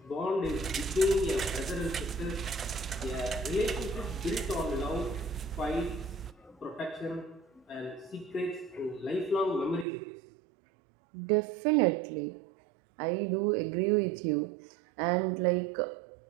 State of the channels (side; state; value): left; drops out; at 9.9 s